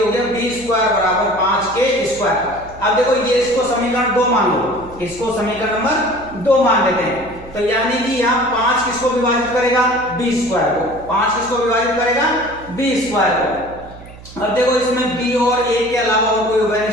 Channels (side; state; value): right; noise; hum, 18 dB below the sound